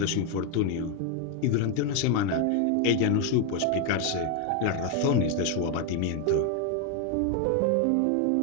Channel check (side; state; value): both; different; correlation 0.01